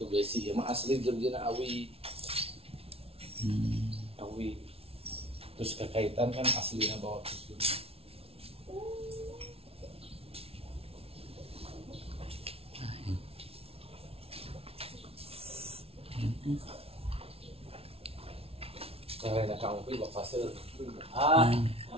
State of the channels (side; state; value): left; late; 0.28 ms